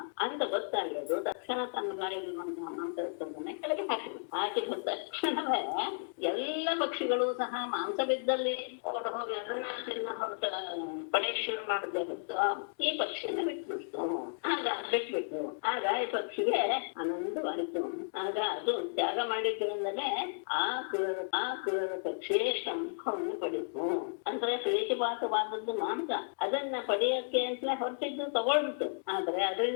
ಅಂತ ಗೊತ್ತಾಗೋದು. ತಕ್ಷಣ ತನ್ನ ಬಾಯಲ್ಲಿರುವಂತಹ ಮಾಂಸ ತುಂಡನ್ನೇ ಕೆಳಗೆ ಹಾಕಿದ ತಕ್ಷಣವೇ ಎಲ್ಲ ಪಕ್ಷಿಗಳು ಸಹ ಮಾಂಸ ಬಿದ್ದಲ್ಲಿ ಹೊರಟು ಹೋಗಿ ಅದನ್ನ ತಿನ್ನ ಹೊರಟ ಪಡೆಯಕ್ಕೆ ಶುರು ಮಾಡದೆ ಹೊತ್ತು ಈ ಪಕ್ಷಿಯನ್ನ ಬಿಟ್ಬಿಟ್ಟು ಬಿಟ್ಬಿಟ್ಟು ಆಗ ಈ ಪಕ್ಷಿಗೆ ಆನಂದವಾಯಿತು. ಆಗ ಅದು ತ್ಯಾಗ ಮಾಡಿದ್ರಿಂದಲೇ ಆ ಕ್ರೂರ ಪಕ್ಷಿ ಶಂಖವನ್ನು ಪಡಿತು. ಅಂದ್ರೆ ಪ್ರೀತಿಪಾತವಾದದ್ದು ಮಾಂಸ, ಅದನ್ನ ಪಡೆಯಕ್ಕೆ ಅಂತಲೇ ಹೊರಟಿದ್ದು ತಗೊಳ್ಬಿಟ್ಟು, ಆದ್ರೆ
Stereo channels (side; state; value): right; silent; digital silence